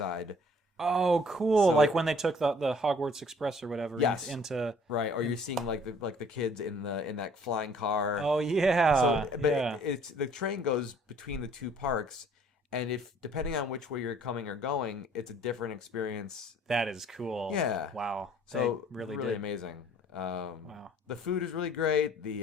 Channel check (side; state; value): both; normal; correlation 0.56